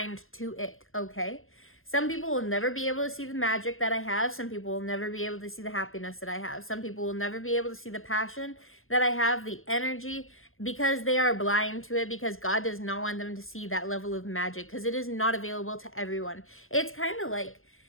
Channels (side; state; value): right; late; 0.60 ms